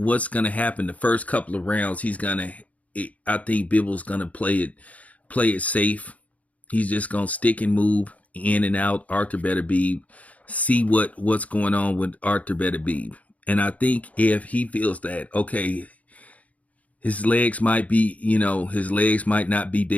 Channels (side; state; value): right; late; 0.069 ms